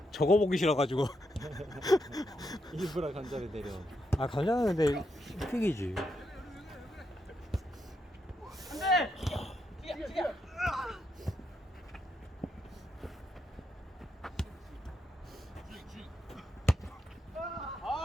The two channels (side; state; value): both; normal; correlation 0.81